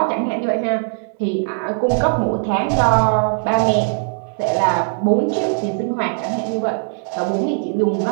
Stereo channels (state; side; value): silent; left; 66 dB below the other